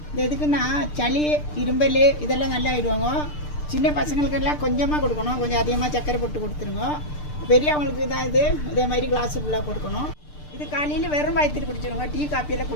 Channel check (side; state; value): right; late; 6.7 ms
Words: எதுக்குன்னா சளி, இரும்பல் இதெல்லாம் நல்லா ஆயிடுவாங்க. சின்ன பசங்களுக்கெல்லாம் கொஞ்சமாக கொடுக்கணும், கொஞ்சம் அதிகமாக சர்க்கரை போட்டு கொடுத்துருங்க. பெரியவங்களுக்கு தான் இதே மாதிரி கிளாஸு ஃபுல்லாக கொடுக்கணும். இது காலையில் வெறும் வயிற்றுட்டு குடிச்சிடுங்க. டீ காப்பியெல்லாம்